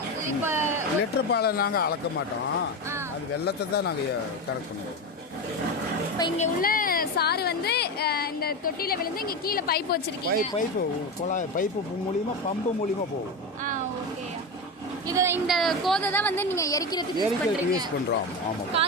இப்போ லிட்டர் பாலை நாங்கள் அளக்க மாட்டோம், அது வெல்லத்தை தான் நாங்கள் கரெக்ட் பண்ணுவோம். இப்போ இங்கே உள்ள சாறு வந்து இந்த தொட்டியில் விழுந்து இங்கே கீழே பைப் வச்சிருக்கீங்க. பைப்பு மூலியமாக பம்பு மூலியமாக போகும். ஓகே. இந்த கோதை தான் வந்து நீங்கள் எரிக்கிறதுக்கு யூஸ் பண்ணுறோம். ஆமாம்.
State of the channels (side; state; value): both; normal; correlation 0.19